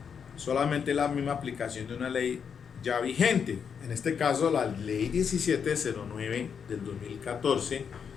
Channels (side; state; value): right; quieter; 6.9 dB